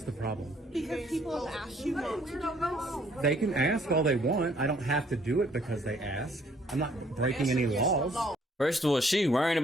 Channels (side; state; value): both; normal; correlation 0.63